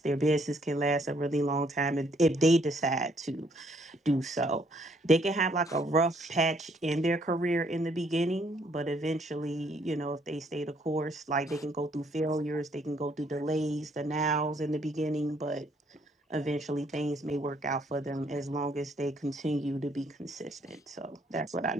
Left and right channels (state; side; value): normal; both; correlation 0.67